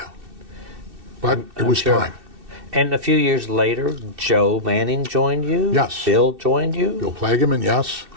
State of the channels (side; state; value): left; late; 2.6 ms